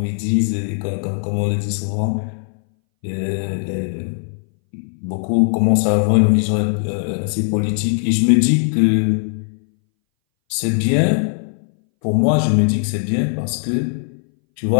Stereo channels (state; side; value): silent; right; 62 dB below the other